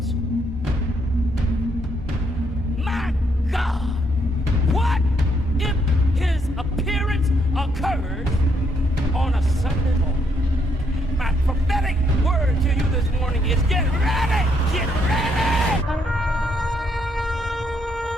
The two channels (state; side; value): normal; both; correlation 0.74